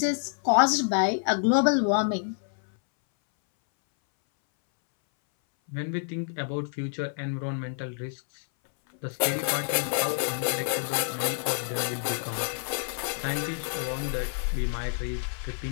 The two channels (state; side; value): silent; right; 59 dB below the other